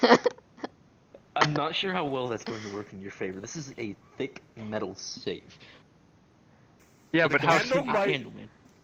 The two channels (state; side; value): identical; both; correlation 1.00